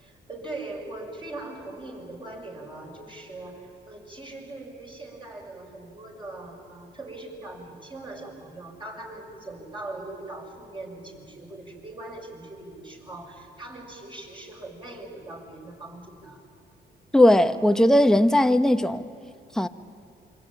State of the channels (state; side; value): normal; both; correlation 0.92